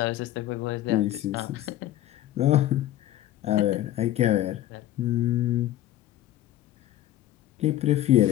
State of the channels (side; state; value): right; quieter; 13.8 dB